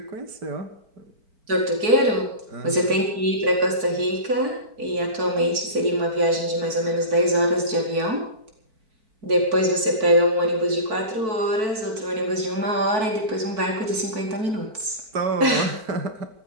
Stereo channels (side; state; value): left; late; 4.6 ms